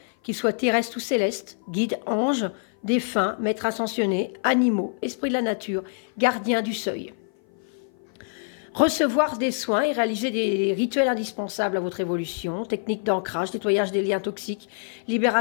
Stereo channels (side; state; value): right; silent; 56 dB below the other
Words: qu'ils soient terrestres ou célestes, guides, anges, défunts, maîtres ascensionnés, animaux, esprits de la nature, gardiens du seuil. Recevoir des soins et réaliser des rituels indispensables à votre évolution, techniques d'ancrage, nettoyage des liens toxiques,